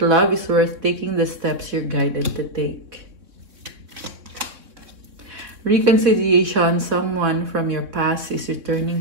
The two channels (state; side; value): late; left; 3.9 ms